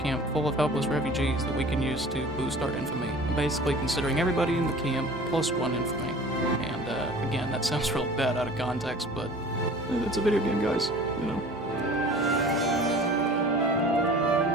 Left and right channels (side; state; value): both; normal; correlation 0.43